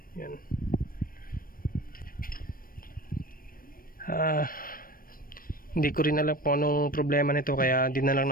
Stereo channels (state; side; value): late; right; 0.41 ms